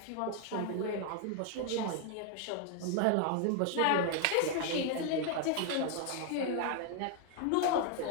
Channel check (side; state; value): both; different; correlation 0.00